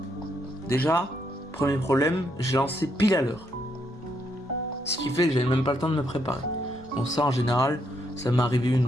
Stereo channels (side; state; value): both; normal; correlation 0.76